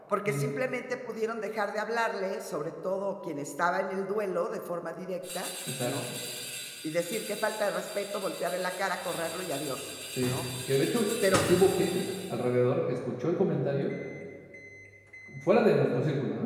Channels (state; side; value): identical; both; correlation 1.00